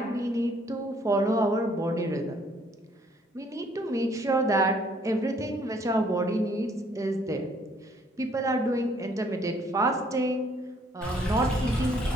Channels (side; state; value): both; normal; correlation 0.63